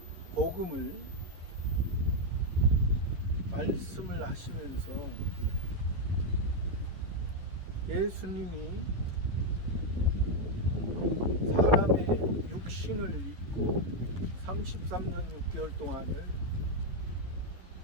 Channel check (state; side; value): late; left; 11 ms